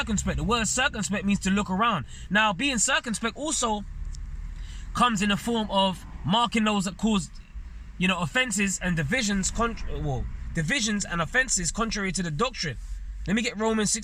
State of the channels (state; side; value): identical; both; correlation 1.00